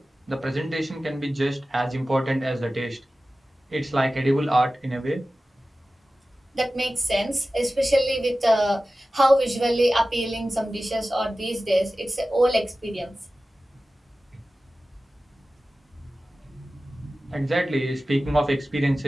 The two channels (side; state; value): both; normal; correlation 0.96